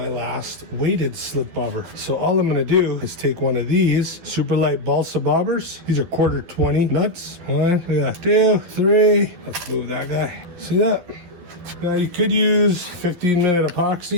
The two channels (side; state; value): left; late; 12 ms